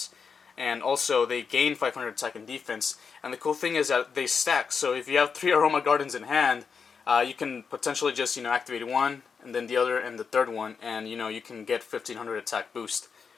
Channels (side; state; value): right; quieter; 5.8 dB